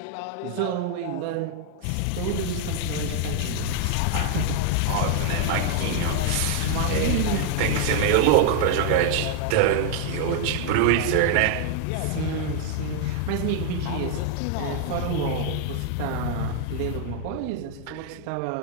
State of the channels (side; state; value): both; different; correlation 0.00